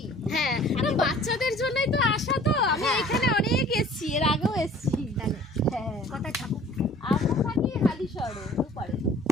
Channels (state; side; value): normal; both; correlation 0.50